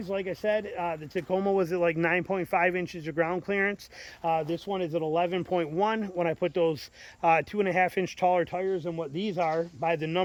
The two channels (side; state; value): both; identical; correlation 1.00